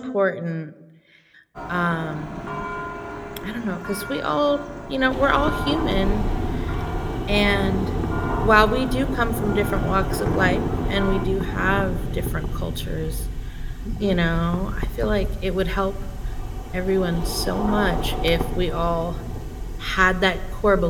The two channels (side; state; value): both; identical; correlation 1.00